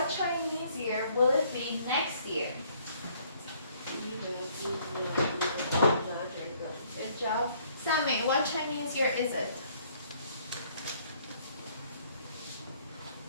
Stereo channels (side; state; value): both; inverted; correlation -0.63